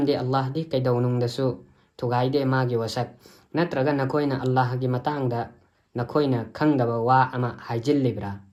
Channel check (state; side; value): identical; both; correlation 1.00